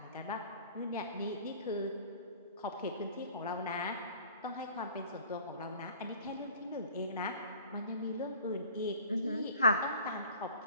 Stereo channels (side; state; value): both; inverted; correlation -0.48